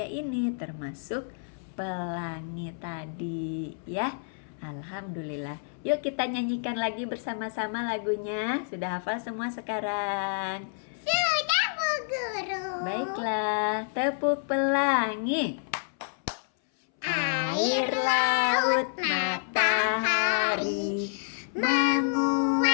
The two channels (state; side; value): silent; right; 59 dB below the other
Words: ini, termasuk pelangi tadi, ya. Alhamdulillah. Yuk kita nyanyikan lagi bersama-sama lagunya. Sudah hafal semua sekarang? Sudah, Bu Guru. Baiklah, tepuk pelangi. Air, laut, matahari